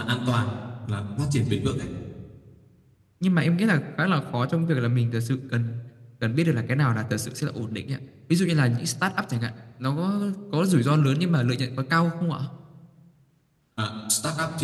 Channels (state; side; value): identical; both; correlation 1.00